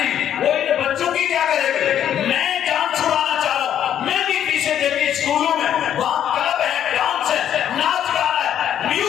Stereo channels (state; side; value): quieter; right; 10.1 dB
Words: وہ ان بچوں کی کیا کرے گا. میں جان چھڑانا چاہ رہا ہوں, میں بھی پیچھے دیکھی اسکولوں میں وہاں کلب ہے, ڈانس ہے, ناچ گانا ہے,